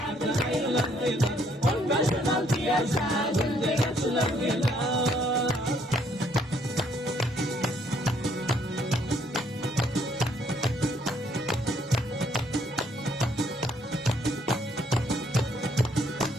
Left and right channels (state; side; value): normal; both; correlation 0.67